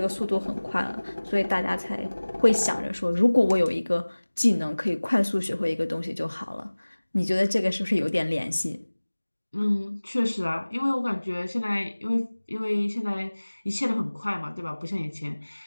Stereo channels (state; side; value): inverted; both; correlation -1.00